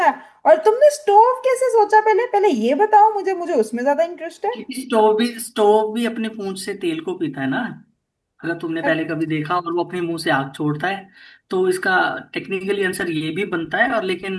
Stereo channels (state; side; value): identical; both; correlation 1.00